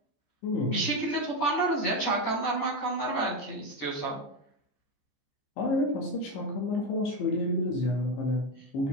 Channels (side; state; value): right; late; 14 ms